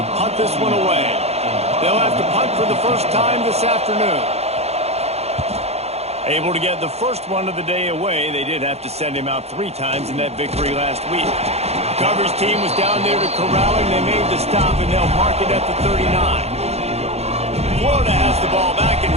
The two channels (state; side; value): late; left; 0.31 ms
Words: punt this one away. They'll have to punt for the first time this afternoon. Able to get the first one of the day away. They did have to send him out 3 times in that victory last week. Coverage team was down there to corral him. They made the stop, and they'll mark it at the 39. Florida has the ball back, and